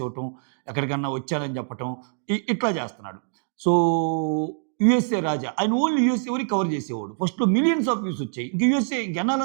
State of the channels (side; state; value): left; silent; digital silence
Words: ఇవ్వటం, ఎక్కడికన్నా వచ్చానని చెప్పటం ఇట్లా చేస్తున్నాడు. సో, యూఎస్ఏ రాజా ఆయన ఓన్లీ యూఎస్ఏ వరకు కవర్ చేసేవాడు. ఫస్ట్‌లో మిలియన్స్ ఆఫ్ వ్యూస్ వచ్చాయి. ఇంక యూఎస్ఏ